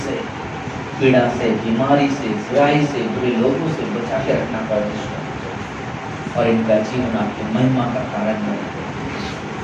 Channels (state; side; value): identical; both; correlation 1.00